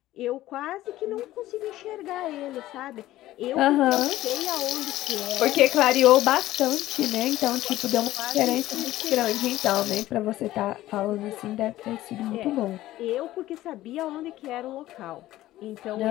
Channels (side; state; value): right; quieter; 15.3 dB